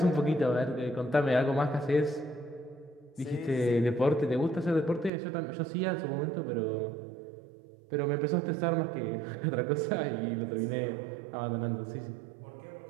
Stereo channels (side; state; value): left; drops out; at 5.1 s